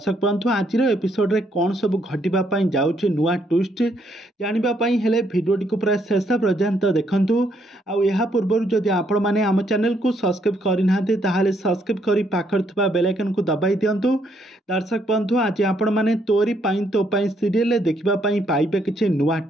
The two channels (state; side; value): normal; both; correlation 0.72